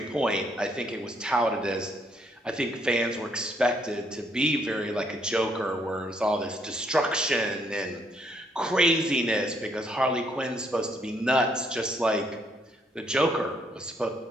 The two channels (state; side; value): normal; both; correlation 0.70